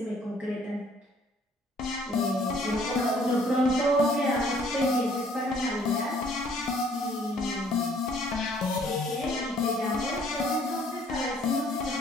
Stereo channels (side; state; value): both; normal; correlation 0.60